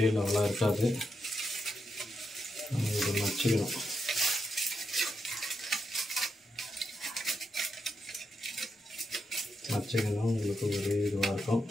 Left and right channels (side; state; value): both; normal; correlation 0.84